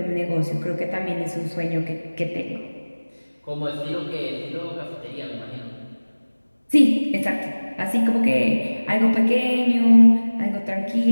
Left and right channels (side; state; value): both; inverted; correlation -1.00